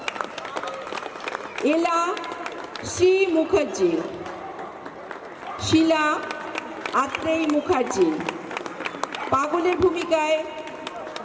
এলা শ্রী মুখার্জি, শিলা আত্রেই মুখার্জি, পাগলের ভূমিকায়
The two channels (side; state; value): both; identical; correlation 1.00